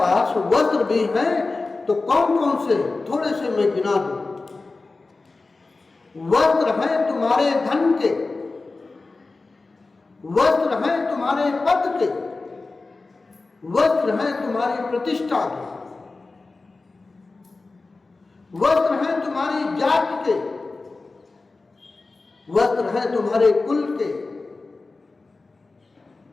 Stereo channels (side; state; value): right; quieter; 3.6 dB